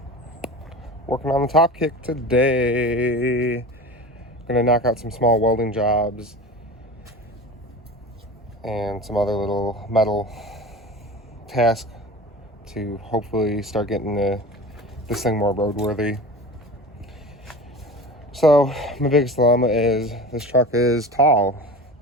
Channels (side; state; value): both; normal; correlation 0.33